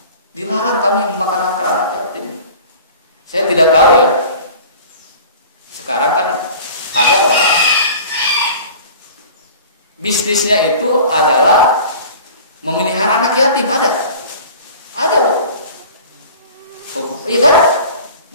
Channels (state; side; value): inverted; both; correlation -0.42